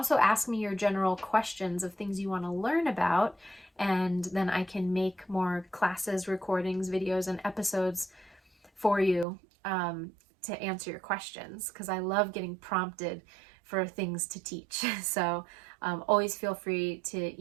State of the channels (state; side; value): drops out; left; at 9.2 s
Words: ask me your general questions of things you want to learn about, and then I can make more classes, recordings, videos, and episodes for you to answer your questions, because I love getting prompted for things to teach. So always feel free to